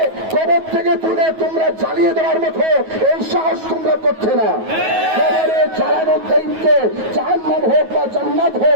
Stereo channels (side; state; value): left; late; 9.3 ms